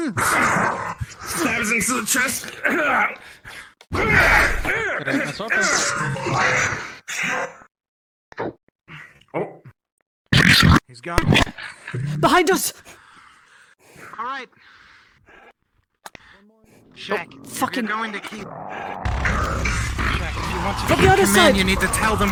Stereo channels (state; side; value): identical; both; correlation 1.00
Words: Stabs into the chest. That's open. He's gone. Behind us! All right. Shaq, Fucking- you're going to keep... Shaq, if you want to From keep the other command, side. you need to tell